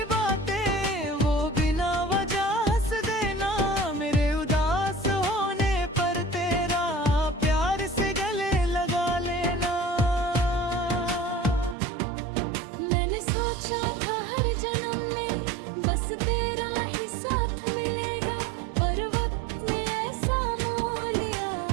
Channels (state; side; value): drops out; left; at 11.8 s